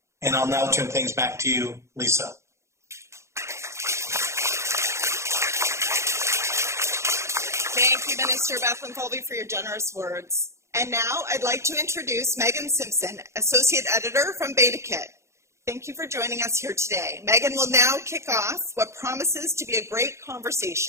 and I'll now turn things back to you, Lisa. Thank you, Minister Bethlenfalvy, for your generous words. And now I'd like to introduce Megan Simpson, Associate Editor from BetaKit. Thank you for joining us here today. Megan will now kick off what promises to be a great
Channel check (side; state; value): left; late; 0.14 ms